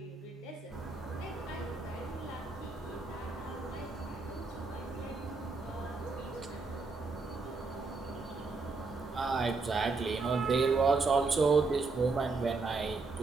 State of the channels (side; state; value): left; quieter; 4.0 dB